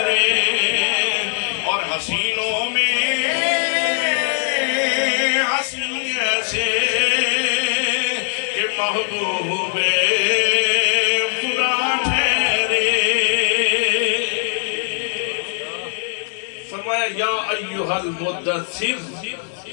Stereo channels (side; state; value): right; silent; 66 dB below the other